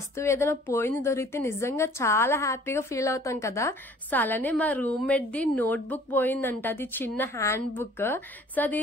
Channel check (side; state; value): both; normal; correlation 0.53